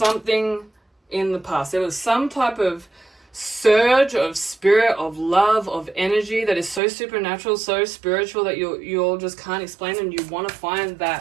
in the past. There was some type of surge of spirit, of love, of energy that is so supernatural, so spiritual that you all just can't explain, and you want to find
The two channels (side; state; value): left; drops out; at 6.8 s